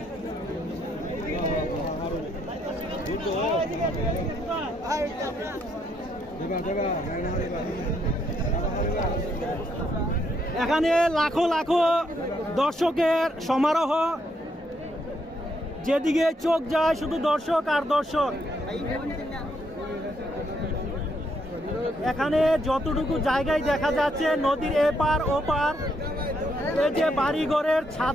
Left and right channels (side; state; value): both; normal; correlation 0.75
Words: এখানে লাখো লাখো দর্শকের সমারোহ, যেদিকে চোখ যায় শুধু দর্শক আর দর্শক। এখানে যতটুকু জায়গায় দেখা যাচ্ছে নদীর এপার ওপার, এই যে বাড়িঘরের